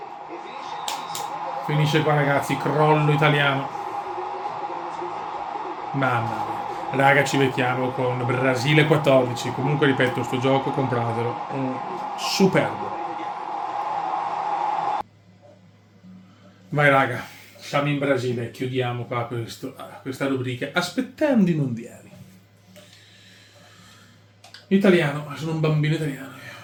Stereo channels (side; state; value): both; identical; correlation 1.00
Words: e finisce qui. Finisce qua ragazzi, crollo italiano. Mamma mia. Raga, ci becchiamo con Brasile 14. Comunque ripeto, sto gioco compratelo. Superbo. Vai raga, siamo in Brasile, chiudiamo qua questa rubrica aspettando i mondiali. Italiano, sono un bambino italiano.